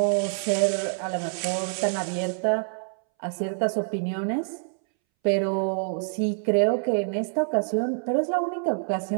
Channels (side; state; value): left; silent; 61 dB below the other